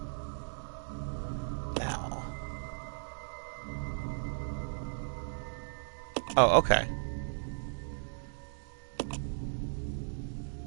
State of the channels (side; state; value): left; silent; digital silence